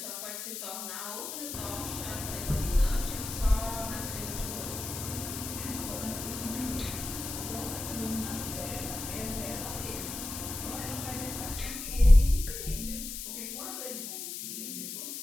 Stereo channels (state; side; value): noise; left; hiss, 6 dB below the sound